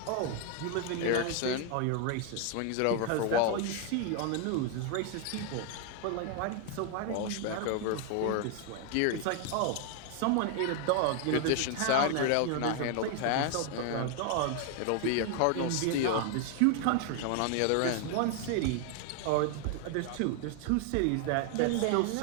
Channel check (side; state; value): both; different; correlation 0.00